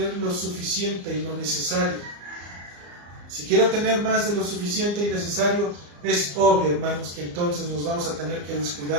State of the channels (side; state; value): left; late; 34 ms